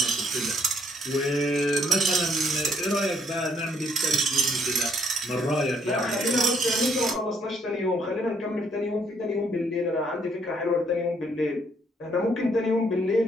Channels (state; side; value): normal; both; correlation 0.68